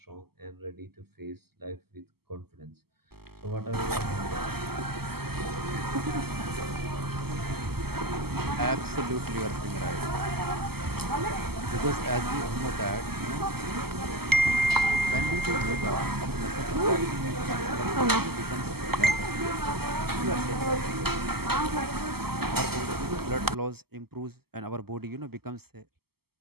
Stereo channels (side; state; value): left; late; 0.96 ms